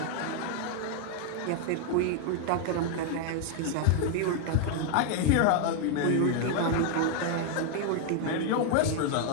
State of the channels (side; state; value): both; different; correlation 0.00